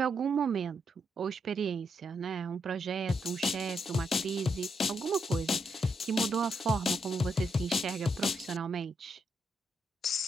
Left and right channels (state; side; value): normal; both; correlation 0.79